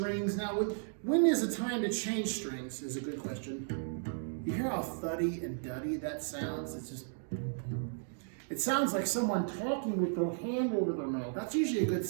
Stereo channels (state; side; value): silent; left; digital silence